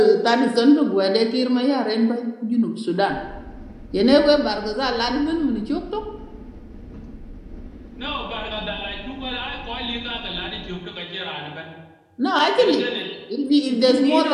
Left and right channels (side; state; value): both; identical; correlation 1.00